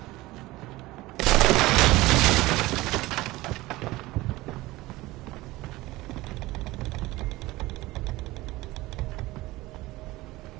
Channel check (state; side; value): quieter; left; 19.2 dB